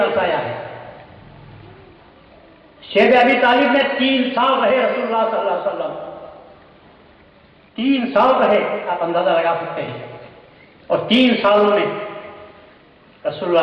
ہے۔ شیخ ابی طالب نے 3 سال رہے رسول اللہ صلی اللہ علیہ وسلم، 3 سال رہے، آپ اندازہ لگا سکتے ہیں، اور 3 سالوں میں رسول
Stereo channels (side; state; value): both; identical; correlation 1.00